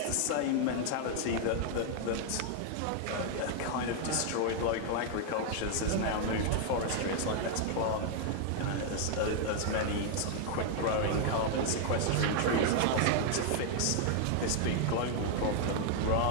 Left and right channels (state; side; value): different; both; correlation 0.00